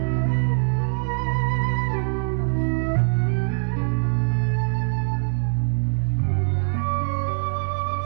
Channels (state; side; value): silent; left; digital silence